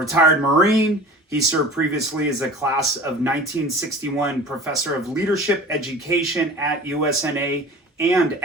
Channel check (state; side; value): normal; both; correlation 0.40